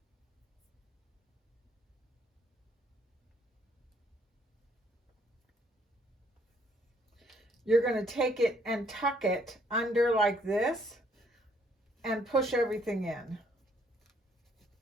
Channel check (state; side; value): normal; both; correlation 0.66